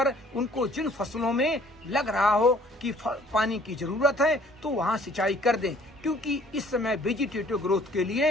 उनको जिन फसलों में लग रहा हो कि पानी की जरूरत है तो वहां सिंचाई कर दें, क्योंकि इस समय वेजिटेटिव ग्रोथ के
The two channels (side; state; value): both; normal; correlation 0.56